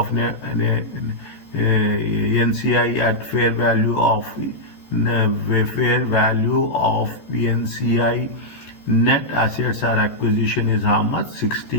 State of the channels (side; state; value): right; late; 14 ms